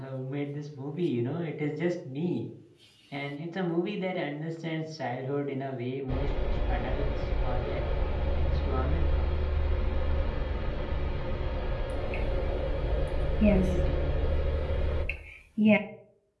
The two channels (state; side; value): identical; both; correlation 1.00